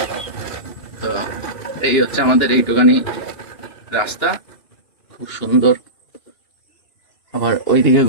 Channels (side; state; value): right; late; 2.9 ms